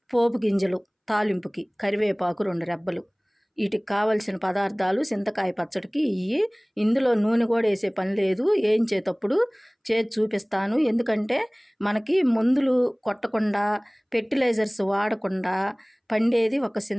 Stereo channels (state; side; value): identical; both; correlation 1.00